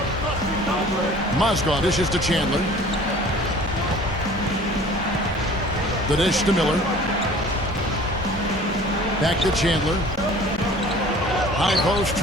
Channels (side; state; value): both; normal; correlation 0.47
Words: Mozgov dishes to Chandler. The dish to Miller. Back to Chandler. High post